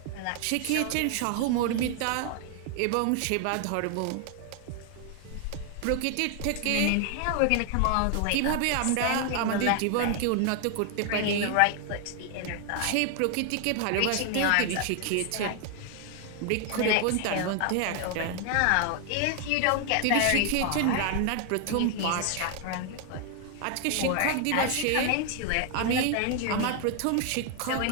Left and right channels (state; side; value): different; both; correlation 0.00